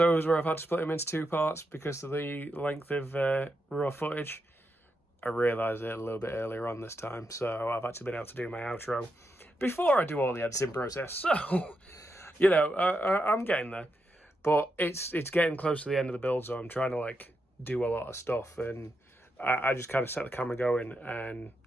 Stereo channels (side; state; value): both; normal; correlation 0.84